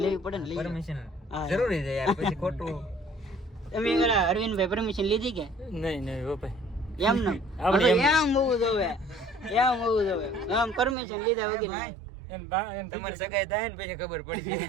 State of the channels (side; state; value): left; drops out; at 11.0 s